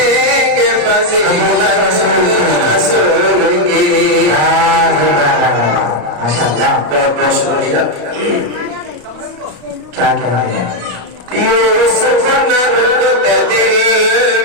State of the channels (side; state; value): left; late; 34 ms